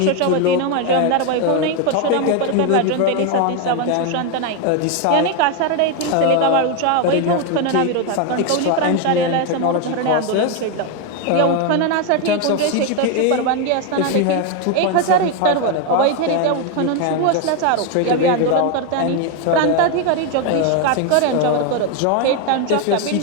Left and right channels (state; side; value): different; both; correlation 0.01